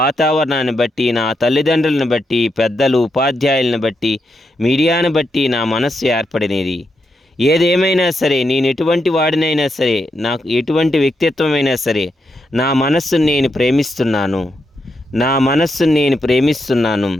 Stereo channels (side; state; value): both; normal; correlation 0.83